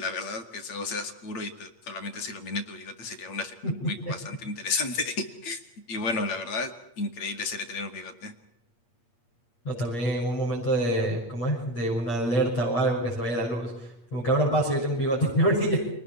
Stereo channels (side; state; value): right; late; 8.5 ms